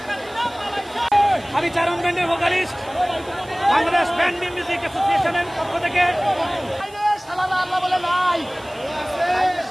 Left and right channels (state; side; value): noise; right; hiss, 24 dB below the sound